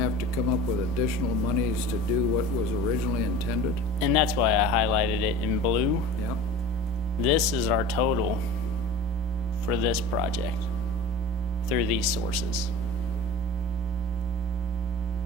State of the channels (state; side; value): normal; both; correlation 0.37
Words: to come up with additional monies to do what was originally intended? And that's why I highlighted it in blue. Yeah, This is our total for this project through these sources.